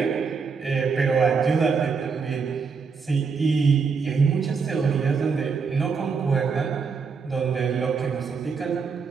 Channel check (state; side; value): quieter; left; 5.4 dB